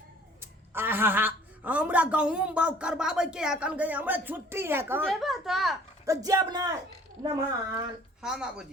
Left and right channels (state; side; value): normal; both; correlation 0.54